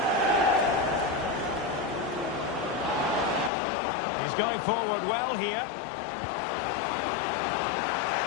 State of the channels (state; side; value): drops out; right; at 3.5 s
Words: He's going forward well here.